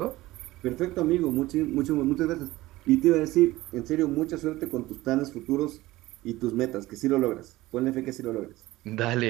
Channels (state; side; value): quieter; left; 18.0 dB